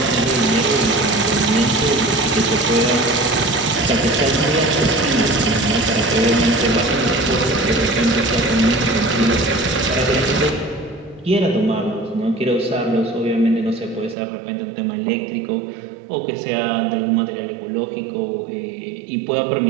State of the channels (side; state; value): left; drops out; at 14.2 s